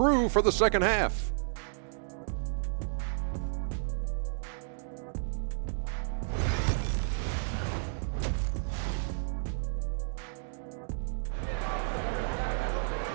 for the second half.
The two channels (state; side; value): silent; left; digital silence